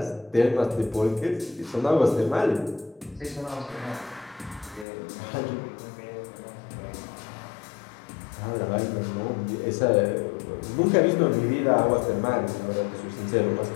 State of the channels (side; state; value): right; drops out; at 4.9 s